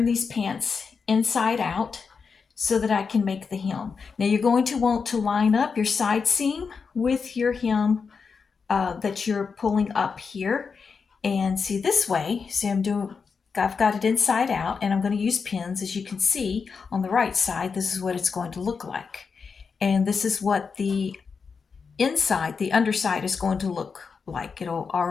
these pants inside out so that I can make the hem. Now you're going to want to line up your side seam with your hem that you're pulling up here. And see, this way, see, I've got it inside out, and I'm going to use pins. As you can see on the right side, this is what it's going to look like. And this is what the inside, the underside, is going to look like. It'll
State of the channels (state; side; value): quieter; right; 5.4 dB